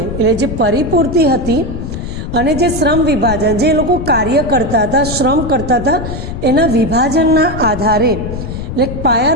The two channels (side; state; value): left; noise; rumble, 7 dB below the sound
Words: જે પરિપૂર્તિ હતી, અને જે શ્રમ વિભાજન, જે લોકો કાર્ય કરતા હતા, શ્રમ કરતા હતા, એના વિભાજનના આધારે એટલે